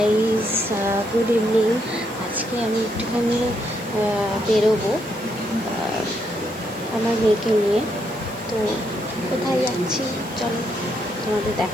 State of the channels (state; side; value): noise; left; hiss, 21 dB below the sound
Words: good evening. আজকে আমি একটুখানি বেরোবো আমার মেয়েকে নিয়ে। তো কোথায় যাচ্ছি চলো তোমাদের